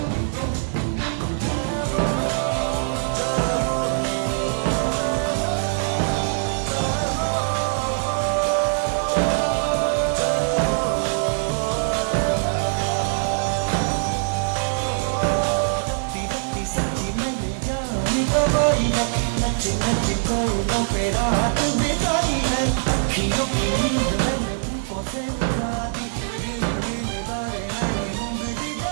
नच नच कोयलों पे रात बिताई है, अखियों की नींद मैंने फूकों से उड़ा दी, दिल दिल बारे मैंने उंगली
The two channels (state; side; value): silent; left; digital silence